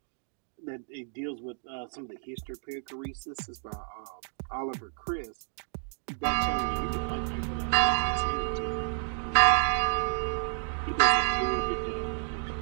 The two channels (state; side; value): silent; left; 58 dB below the other